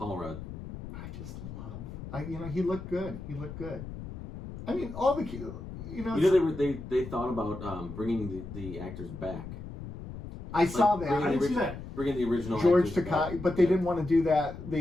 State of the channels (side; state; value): left; noise; rumble, 11 dB below the sound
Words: Rudd. I just love. He looked good. He looked good. I mean, all the they thought about bringing the actors back. I saw that. I didn't see that. Bringing the original George actors Takei, back. but they didn't want to do that.